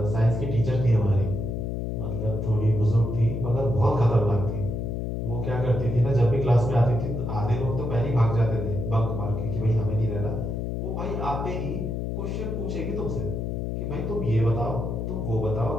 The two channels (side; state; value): left; noise; hum, 2 dB below the sound